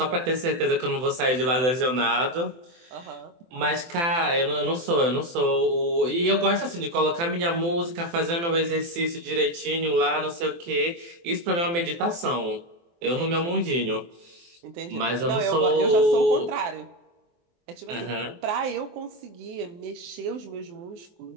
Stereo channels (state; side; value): late; left; 24 ms